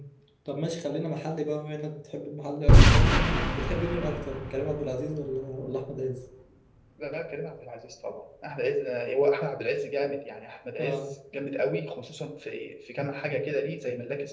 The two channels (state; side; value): identical; both; correlation 1.00